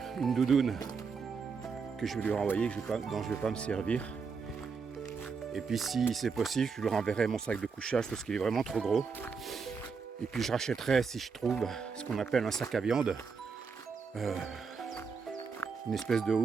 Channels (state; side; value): quieter; left; 5.4 dB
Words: que je vais lui renvoyer, dont je ne vais pas me servir. Et puis si c'est possible, je lui renverrai mon sac de couchage parce qu'il est vraiment trop gros. Et puis je rachèterai, si je trouve, ce qu'on appelle un sac à viande. Une espèce de